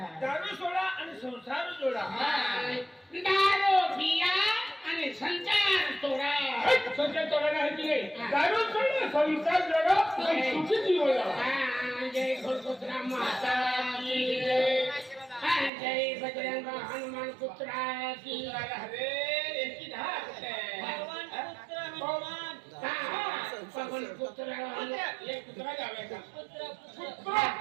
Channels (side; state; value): left; drops out; at 15.7 s